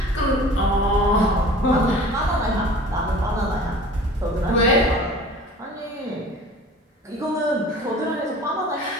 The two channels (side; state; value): both; normal; correlation 0.43